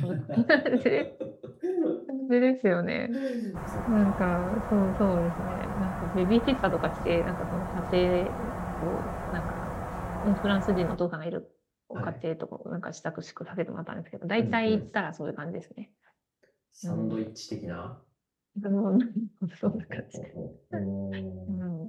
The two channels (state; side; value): identical; both; correlation 1.00